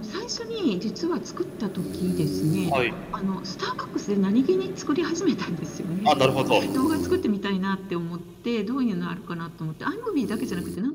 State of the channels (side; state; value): both; identical; correlation 1.00